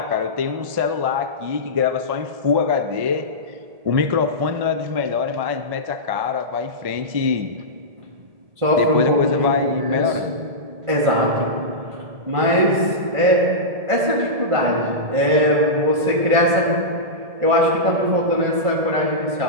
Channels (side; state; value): left; late; 1.7 ms